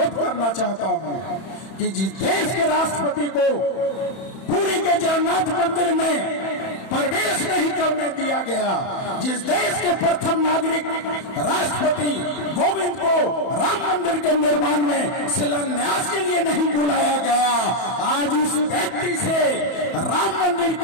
करना चाहता हूं कि जिस देश के राष्ट्रपति को पुरी के जगन्नाथ मंदिर में प्रवेश नहीं करने दिया गया, जिस देश के प्रथम नागरिक राष्ट्रपति कोविंद को राम मंदिर के निर्माण में शिलान्यास के लिए नहीं बुलाया गया, आज उस व्यक्ति से राम मंदिर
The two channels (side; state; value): right; late; 31 ms